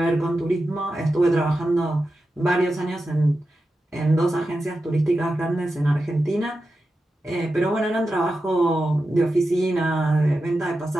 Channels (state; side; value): normal; both; correlation 0.91